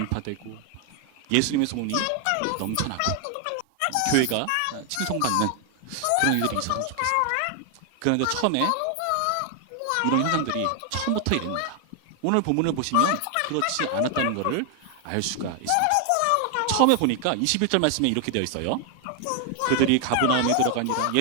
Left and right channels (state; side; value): different; both; correlation 0.00